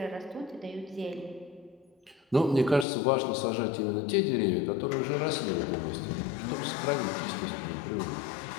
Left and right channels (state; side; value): drops out; right; at 2.9 s